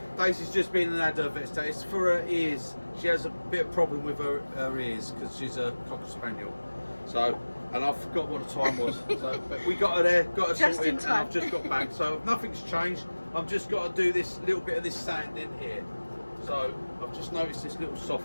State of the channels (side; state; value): both; inverted; correlation -1.00